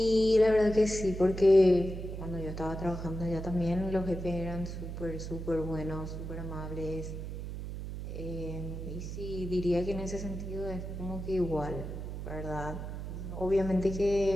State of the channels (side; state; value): right; noise; hum, 7 dB below the sound